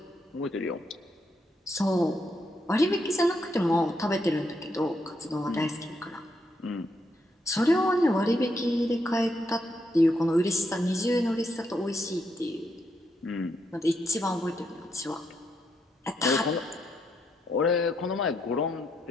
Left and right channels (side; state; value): both; normal; correlation 0.79